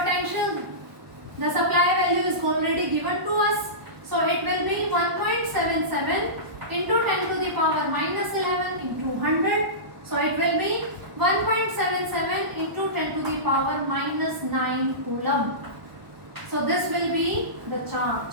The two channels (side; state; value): left; late; 1.0 ms